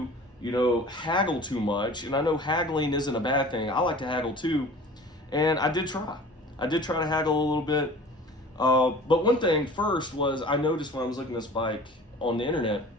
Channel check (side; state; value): both; normal; correlation 0.43